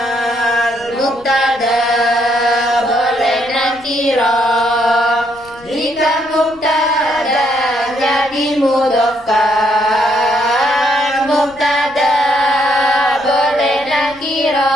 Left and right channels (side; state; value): left; noise; rumble, 27 dB below the sound